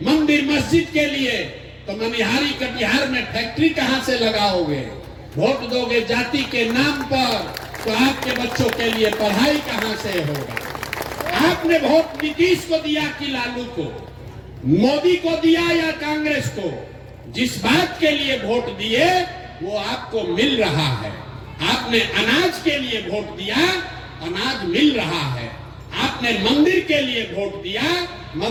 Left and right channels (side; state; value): both; identical; correlation 1.00